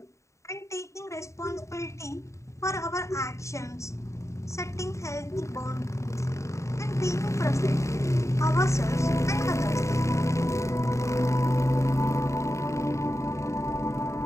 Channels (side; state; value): right; late; 0.14 ms